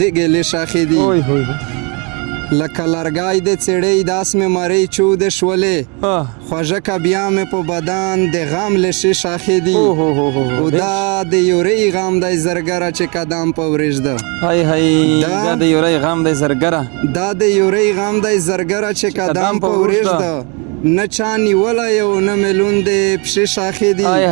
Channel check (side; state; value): left; quieter; 32.8 dB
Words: ګیلې شاخې دي لکه لرګی د څېړۍ داس مې مرۍ چودې شولې خوږه که بیا مې په بدن د غم لشې شاخې دي او دا د یورۍ غم دی زرګره چې قدم په ورېږده دا د یورۍ غم دی زرګره دا د یورۍ غم دی زرګره چې قدم په ورېږده نه چا نیولی او نه مې لوندې پښې شاخې دي